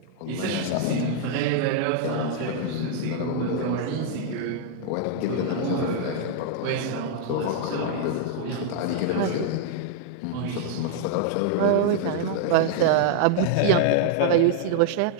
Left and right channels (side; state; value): both; different; correlation 0.00